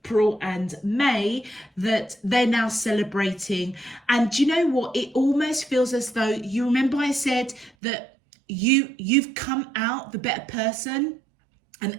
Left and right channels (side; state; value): left; drops out; at 7.7 s